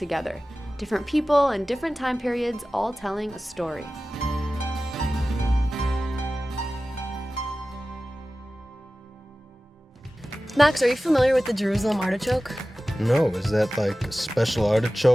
Different people and different time periods, all telling a story. Max, are you familiar with the Jerusalem artichoke? No, is that like a special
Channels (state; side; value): normal; both; correlation 0.96